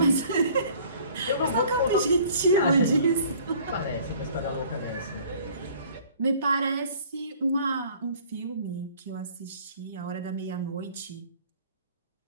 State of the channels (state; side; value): inverted; both; correlation -0.53